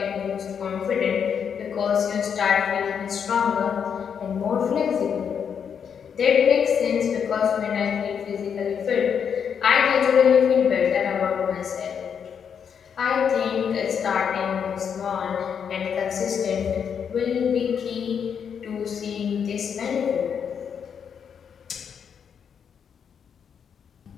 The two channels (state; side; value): quieter; right; 7.4 dB